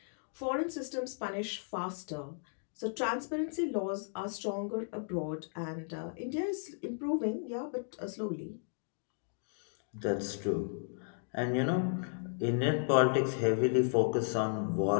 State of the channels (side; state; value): right; silent; digital silence